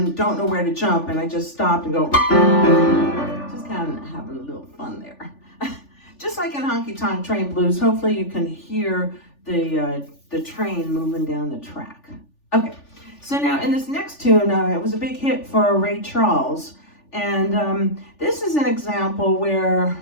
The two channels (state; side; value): late; right; 3.4 ms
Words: don't know where to jump, and I just stopped and go. Kind of having a little fun there. Just like in Honky Tonk Train Blues, hopefully you can hear the train moving down the track. Okay, so now in this next tune, it was a big hit for Ray Charles, and this is an example where